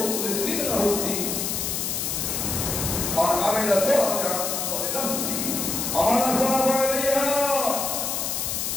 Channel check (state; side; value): noise; left; hiss, 1 dB below the sound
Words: লাহুদ্দিন ওয়া আমিলা সালিহান ফালিনাফসিহি ওয়া মান আসাবা আলাইহা